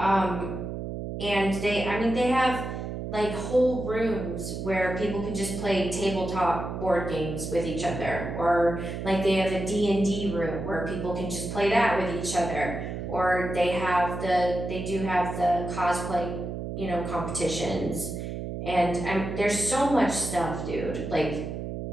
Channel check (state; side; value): noise; right; hum, 6 dB below the sound